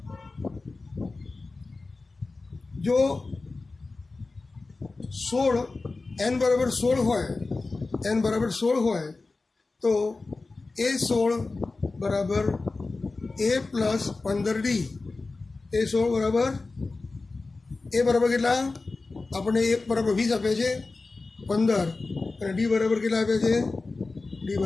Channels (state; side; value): quieter; right; 3.6 dB